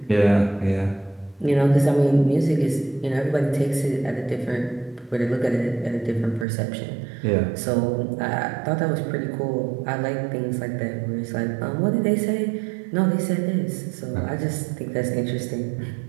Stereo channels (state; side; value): drops out; left; at 6.5 s